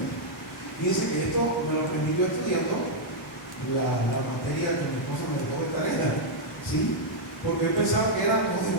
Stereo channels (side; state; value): both; normal; correlation -0.05